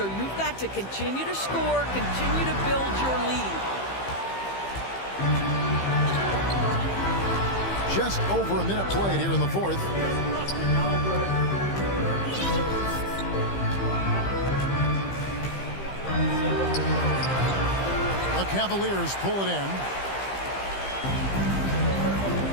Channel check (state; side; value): late; right; 15 ms